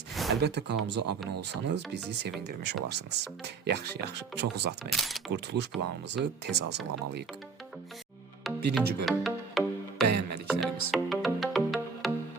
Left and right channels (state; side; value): quieter; left; 5.1 dB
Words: Əlbəttə kanalımıza abunə olsanız bizi sevindirmiş olarsınız. Yaxşı, çox uzatmayın. Qurtuluş planımızı tez hazırlamalıyıq. 1-ci bölüm. Bəyənmədiklərimiz.